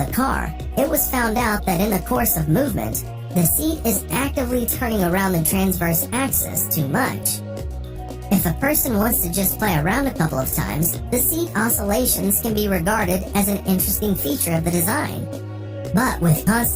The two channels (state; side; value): identical; both; correlation 1.00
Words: car, it was found out that in the course of movement, the seat is actively turning around the transverse axis too much. If a person wants to just play around a couple of times, the seat oscillations can be regarded as an interesting feature of the design. But with